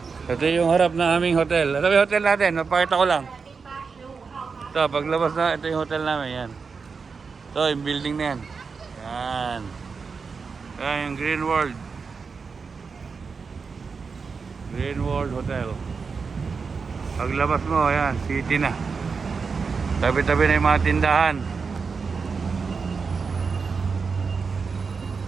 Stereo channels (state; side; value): quieter; left; 5.1 dB